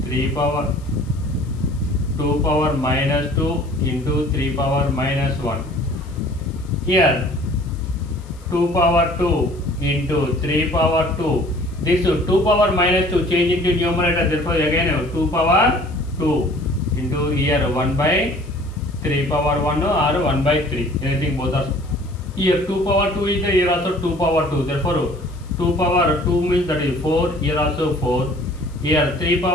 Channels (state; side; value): noise; left; hiss, 27 dB below the sound